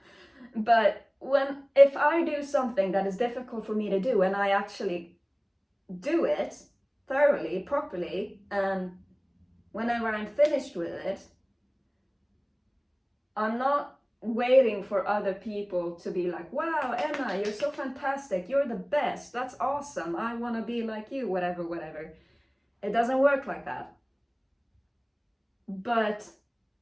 but if I do something that is difficult for me to do and I actually do it thoroughly, properly, and whenever I'm finished with it, I'm not waiting for other people to be like, wow, Emma, you're so fantastic, you're the best, that's awesome, I want to be like you, whatever. It doesn't work like that. But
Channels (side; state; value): both; identical; correlation 1.00